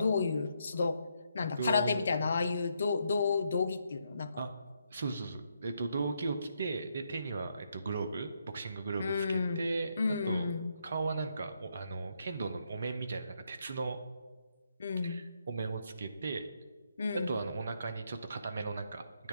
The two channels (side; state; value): both; inverted; correlation -0.78